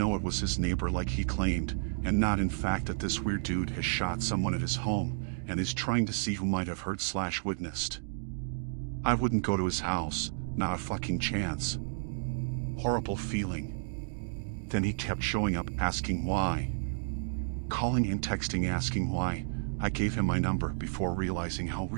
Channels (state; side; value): silent; left; digital silence